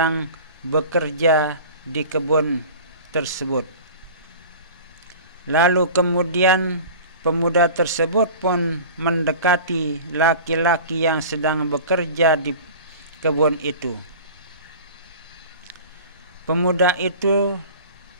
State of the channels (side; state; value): both; inverted; correlation -0.39